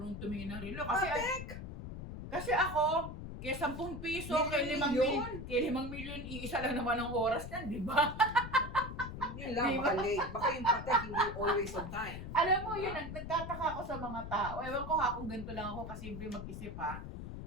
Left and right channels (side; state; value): left; noise; rumble, 9 dB below the sound